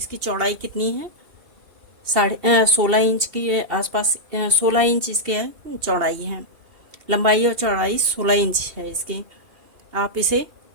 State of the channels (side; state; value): left; late; 2.6 ms